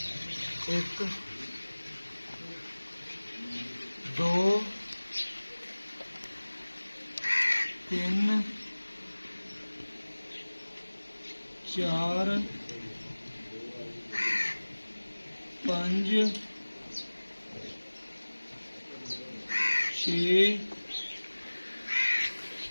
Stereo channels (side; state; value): both; inverted; correlation -1.00